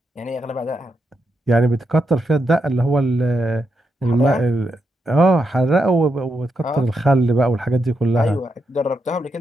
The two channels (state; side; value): normal; both; correlation 0.83